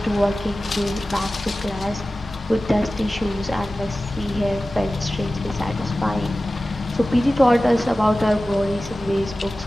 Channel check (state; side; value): normal; both; correlation 0.96